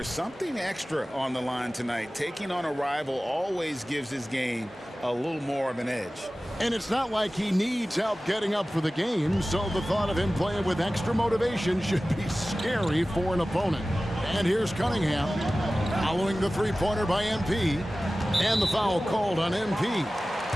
something extra on the line tonight. Taking on a rival always gives his game a little more of an edge. And it's not like he needs help getting up for the game, so the thought of him playing with extra motivation should be scary for an opponent. And here's Cunningham, following the three-pointer by MP, and the foul called on MP.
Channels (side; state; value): both; normal; correlation 0.96